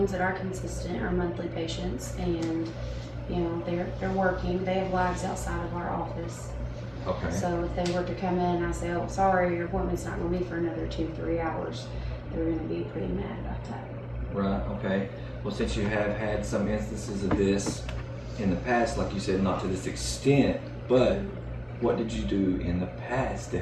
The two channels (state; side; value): identical; both; correlation 1.00